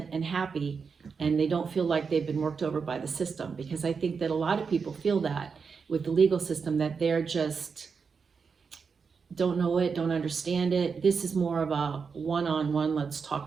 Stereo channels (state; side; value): quieter; left; 5.6 dB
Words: and happy, and they don't feel like they've been worked over by the system, because I think that a lot of people feel that with the legal system, that they're just don't know it, don't understand it. This is more of a one-on-one, let's talk